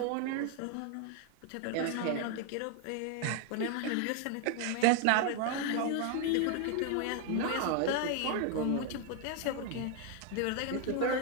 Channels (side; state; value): both; different; correlation 0.00